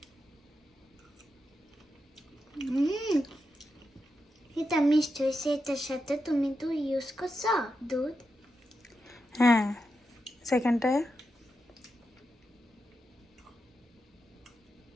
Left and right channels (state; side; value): normal; both; correlation 0.87